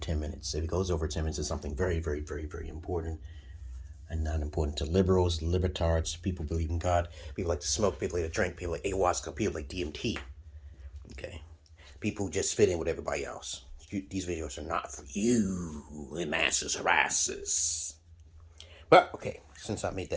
minutes. If it goes over 10 minutes, it's something very, very, very, very important and not important to liberals, libertards, people believe in God, people like to smoke, people like to drink, people like ayahuasca, people like DMT. Okay, people who just fit in with everybody else. These videos are not for you, the masses harassers. But, okay, since I made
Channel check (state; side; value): identical; both; correlation 1.00